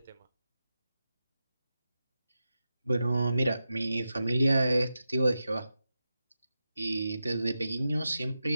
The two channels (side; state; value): both; inverted; correlation -0.91